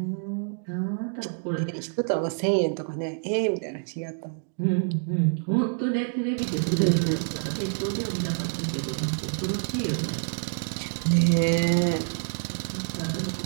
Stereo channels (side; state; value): left; silent; 60 dB below the other